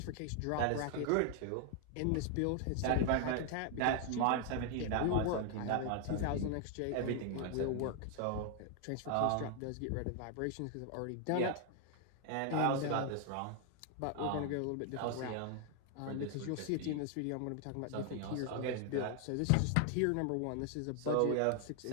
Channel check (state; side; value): different; both; correlation 0.00